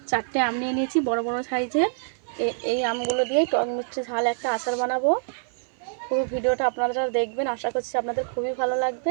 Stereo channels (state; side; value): silent; left; 61 dB below the other